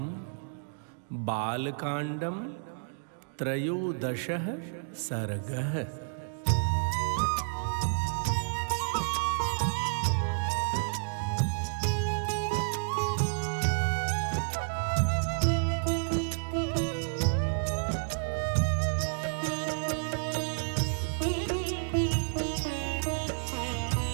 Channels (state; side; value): silent; left; digital silence